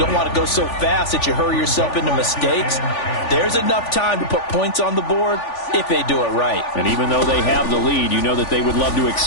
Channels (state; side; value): late; right; 3.4 ms